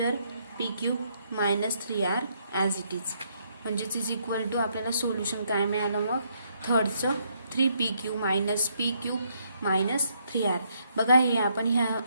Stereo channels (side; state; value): both; inverted; correlation -0.72